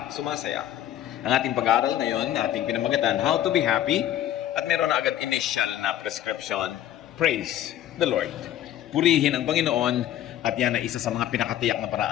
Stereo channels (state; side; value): quieter; right; 12.1 dB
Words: sumasaya. Ang ating pag-aaral ngayon, ating pinamagatan, How to be Happy, at meron na agad initial na prescription, Praise the Lord. Purihin ang Panginoon, at yan ay isa sa mga pinakatiyak na